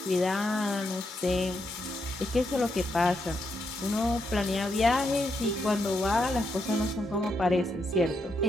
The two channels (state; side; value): normal; both; correlation 0.81